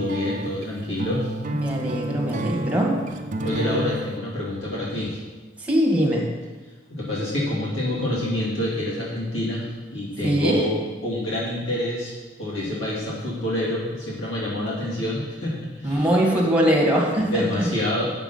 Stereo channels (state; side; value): normal; both; correlation 0.60